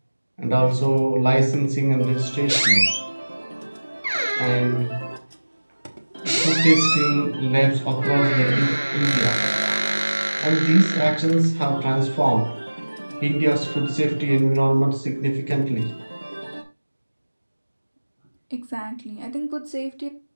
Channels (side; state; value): both; inverted; correlation -1.00